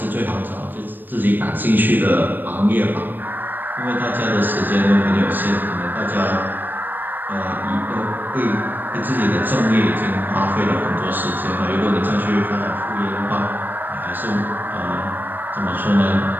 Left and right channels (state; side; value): late; left; 0.092 ms